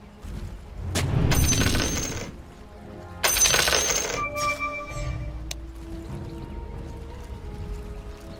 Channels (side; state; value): both; identical; correlation 1.00